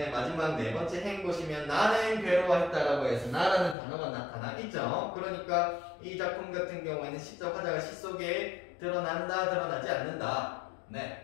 마지막 네 번째 행 보시면 나는 괴로워했다라고 해서 나라는 단어가 나타나겠죠. 그러니까 이 작품 같은 경우에는 시적 화자가 시 속에 드러난다, 드러나지 않는다. 네,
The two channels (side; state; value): right; drops out; at 3.8 s